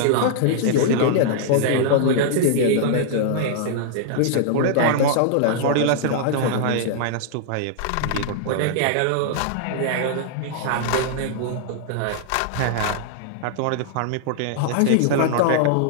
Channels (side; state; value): both; different; correlation -0.01